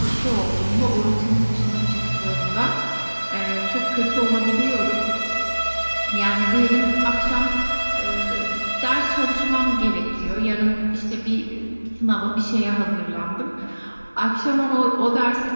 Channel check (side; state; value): both; inverted; correlation -1.00